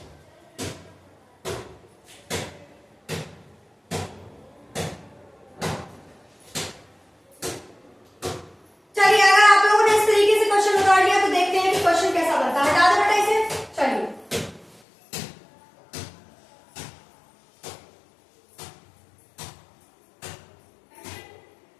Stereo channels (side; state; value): right; drops out; at 14.8 s